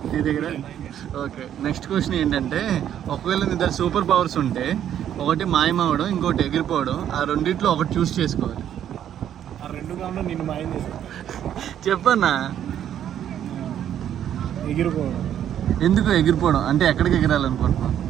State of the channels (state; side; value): quieter; left; 10.2 dB